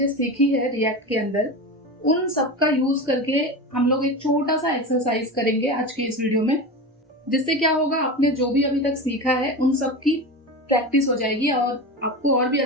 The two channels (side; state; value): both; normal; correlation 0.25